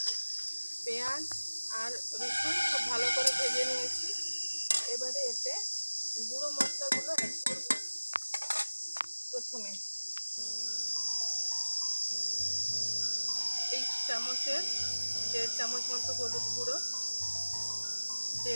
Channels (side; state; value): both; inverted; correlation -1.00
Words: পেঁয়াজ আর রসুন খুব ভালো করে ভেজে নিয়েছি। এবারে এতে গুঁড়ো মশলাগুলো অ্যাড করব। প্রথমে এই চামচের 1.5 চামচ মতো হলুদ গুঁড়ো,